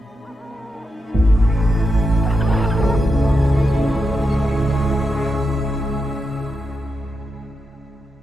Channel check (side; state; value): both; normal; correlation 0.87